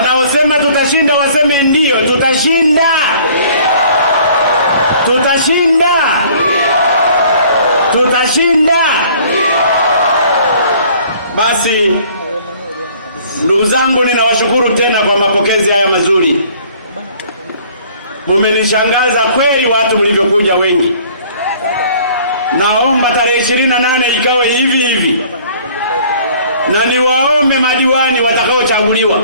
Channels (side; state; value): both; inverted; correlation -0.54